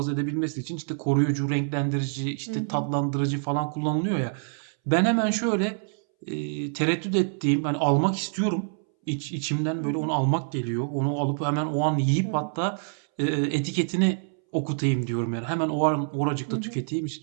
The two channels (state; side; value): silent; left; 61 dB below the other